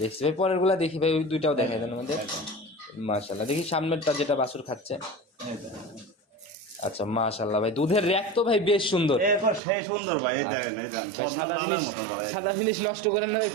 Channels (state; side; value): drops out; left; at 9.6 s